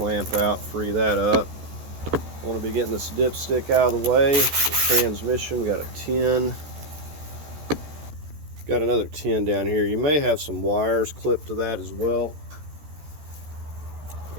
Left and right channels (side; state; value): left; late; 14 ms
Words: out, free that up. I want to be getting this dipstick out of the way. The transmission, we got a 10. Got another 10 down here. You may have some wires clipped to that as well.